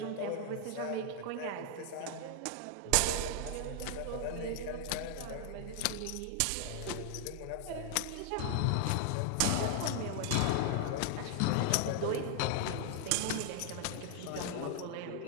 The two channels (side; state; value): both; different; correlation 0.00